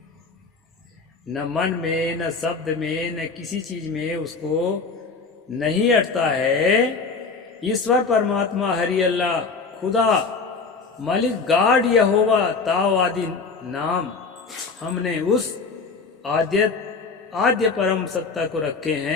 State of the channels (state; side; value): quieter; right; 4.6 dB